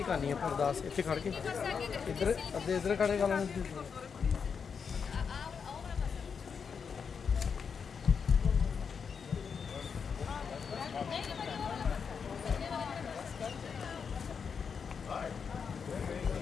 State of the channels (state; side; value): quieter; right; 6.2 dB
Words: ਕਰਨੀ ਆ ਅਰਦਾਸ ਇੱਥੇ ਖੜ ਕੇ ਇੱਧਰ ਅੱਧੇ ਇੱਧਰ ਖੜੇ ਕਰ ਲੈਣੇ